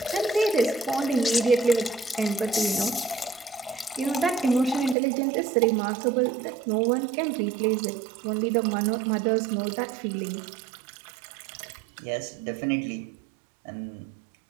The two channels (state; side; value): drops out; left; at 5.0 s